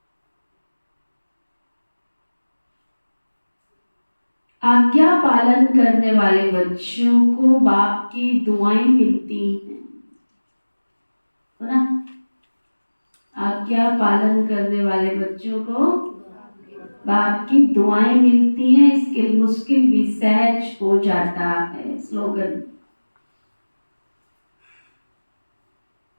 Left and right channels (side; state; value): both; inverted; correlation -1.00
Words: आज्ञा पालन करने वाले बच्चों को बाप की दुआएं मिलती हैं, है ना? आज्ञा पालन करने वाले बच्चों को बाप की दुआएं मिलती हैं, इसके मुश्किल भी सहज हो जाता है। स्लोगन,